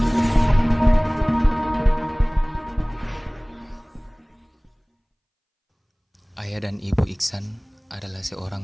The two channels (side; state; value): both; identical; correlation 1.00